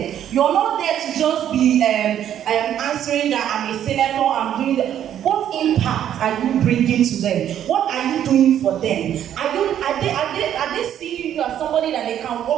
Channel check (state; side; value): quieter; left; 10.4 dB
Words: You're not there to just be answering that I'm a senator, I'm doing that. What impact are you bringing to them? What are you doing for them? Are they seeing you as somebody that they can